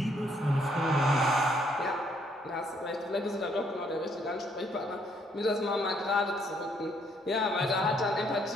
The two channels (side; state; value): both; normal; correlation 0.68